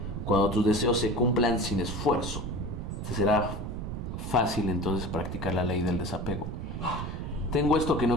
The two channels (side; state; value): right; noise; rumble, 5 dB below the sound